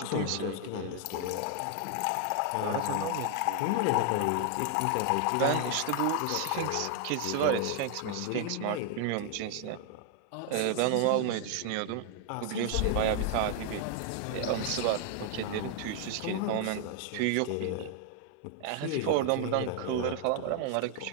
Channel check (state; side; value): different; both; correlation 0.00